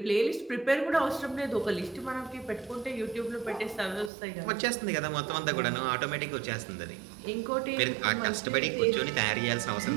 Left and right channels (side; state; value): left; drops out; at 4.1 s